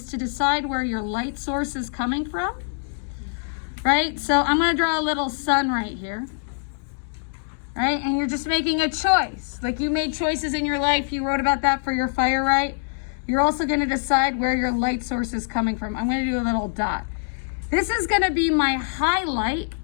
to decide where your light source is coming from. Right? So I'm gonna draw a little sun right here. Right? And you're just making a choice. Like you made choices in your life. You wrote about that for your fire, right? You're also going to decide where your light source is coming from. I'm going to do a little dot. This is going to be my highlight.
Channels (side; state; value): right; silent; digital silence